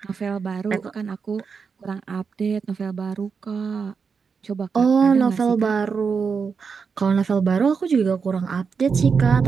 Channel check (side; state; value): left; quieter; 5.7 dB